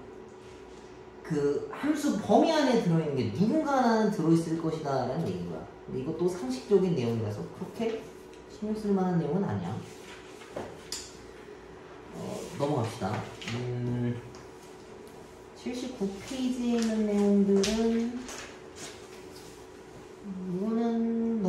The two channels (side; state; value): both; identical; correlation 1.00